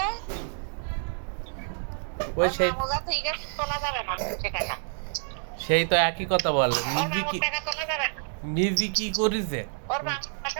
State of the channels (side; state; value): left; silent; digital silence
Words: ওই সেই মোজা থই গেছে, তোলা যাবে না সে টাকা। সেই তো একই কথা বলে, ওর মামুর টাকা তোলা যাবে না, নিজে কি করেছে, ওর মামুর